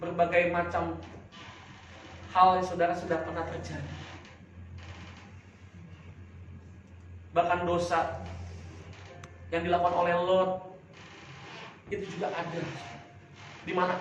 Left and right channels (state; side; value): identical; both; correlation 1.00